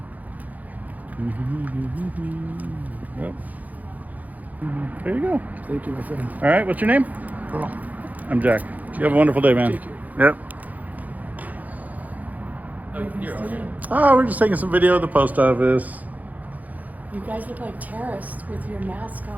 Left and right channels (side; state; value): left; late; 0.079 ms